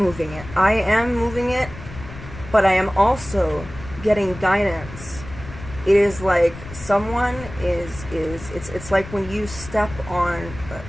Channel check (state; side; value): noise; left; rumble, 14 dB below the sound